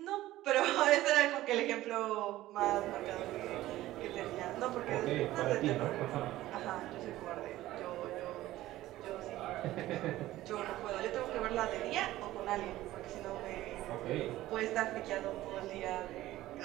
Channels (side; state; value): left; quieter; 15.6 dB